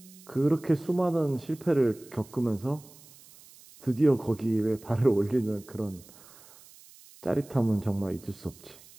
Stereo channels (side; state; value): right; noise; hiss, 23 dB below the sound